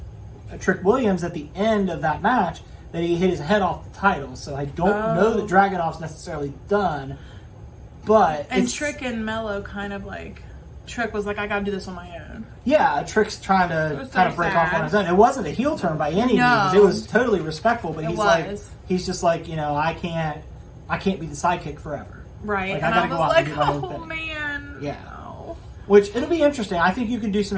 Williams at the end of that match, that he hit his head off the title. So I don't know that Dragunov's necessarily done. But Trick and Mello kind of like... Trick was like, I gotta do this on my own. Yeah, Trick's trying to kind of break off on his own. It wasn't a heel turn by any means. It was totally respectful, but he's just like, I can't be the sidekick forever. Right. Like, and I gotta go out and do my own thing. Man. Yeah. No. Which, it'll be interesting. I think you can do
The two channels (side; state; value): both; identical; correlation 1.00